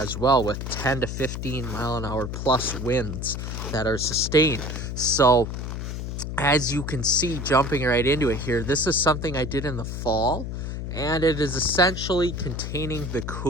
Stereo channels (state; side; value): noise; left; hum, 5 dB below the sound